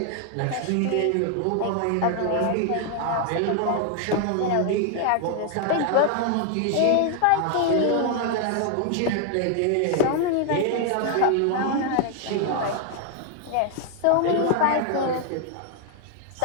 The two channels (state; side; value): different; both; correlation 0.00